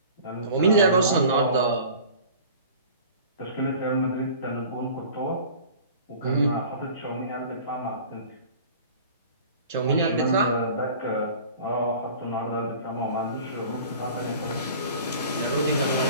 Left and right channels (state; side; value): inverted; both; correlation -0.43